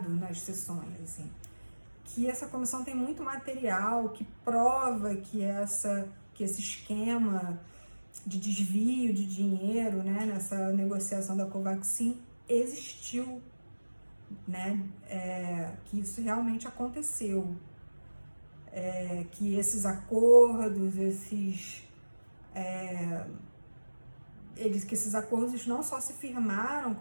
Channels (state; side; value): inverted; both; correlation -1.00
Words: nas sessões, assim, que essa comissão tem muito material que prova que esse esquema de desvio de dinheiro, né, nessa negociação da Covaxin existiu, né, que isso realmente aconteceu, que esses acordos, que esses acordos não só se firmaram,